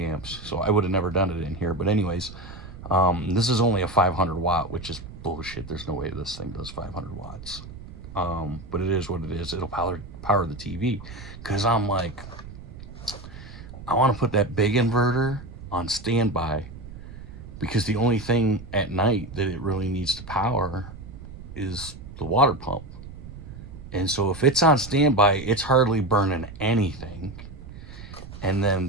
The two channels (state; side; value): noise; right; rumble, 14 dB below the sound